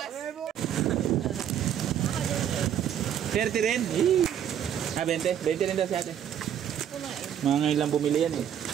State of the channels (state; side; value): quieter; left; 9.6 dB